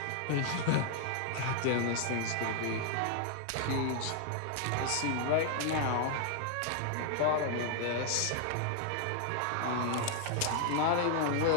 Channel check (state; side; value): different; both; correlation 0.00